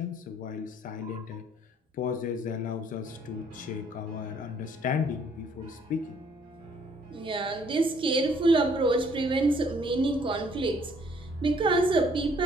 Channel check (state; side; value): normal; both; correlation 0.63